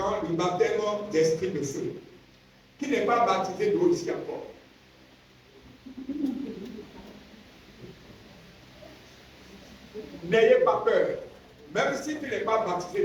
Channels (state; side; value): identical; both; correlation 1.00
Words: le baptême d'esprit de feu, qui n'est pas baptisé d'eau ici encore. N'ayez pas peur. Même si tu n'es pas